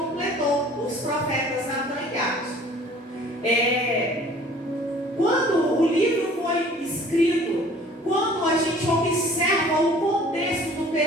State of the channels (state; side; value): normal; both; correlation 0.51